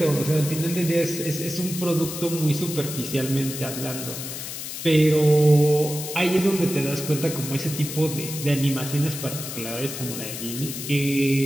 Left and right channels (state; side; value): noise; left; hiss, 8 dB below the sound